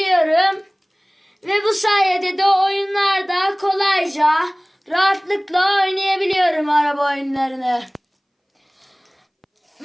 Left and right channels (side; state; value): both; identical; correlation 1.00